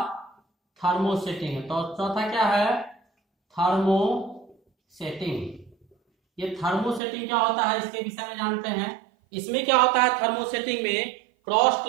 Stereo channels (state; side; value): drops out; left; at 7.0 s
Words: थर्मोसेटिंग। तो चौथा क्या है, थर्मोसेटिंग। ये थर्मोसेटिंग क्या होता है इसके विषय में जानते हैं। इसमें क्या होता है थर्मोसेटिंग में, क्रॉस